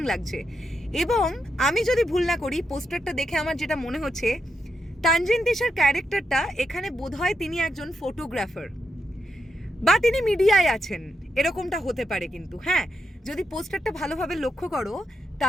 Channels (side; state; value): both; normal; correlation 0.83